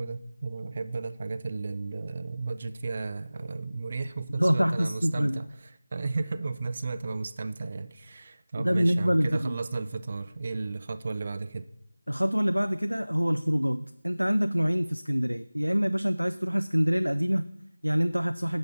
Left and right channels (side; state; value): both; inverted; correlation -0.99